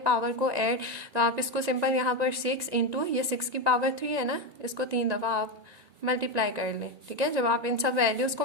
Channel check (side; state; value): left; late; 1.9 ms